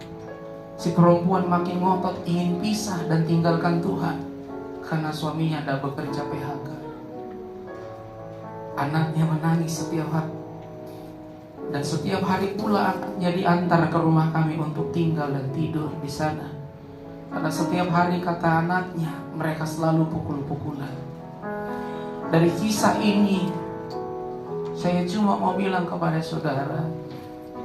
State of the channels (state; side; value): identical; both; correlation 1.00